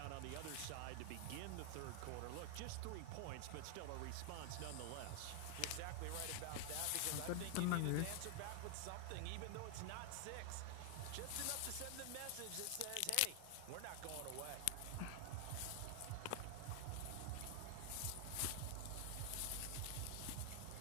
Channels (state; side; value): different; both; correlation 0.00